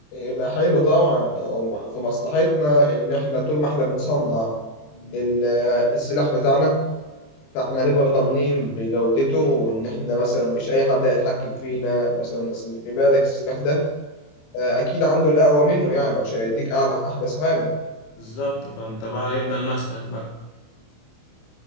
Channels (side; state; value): right; late; 27 ms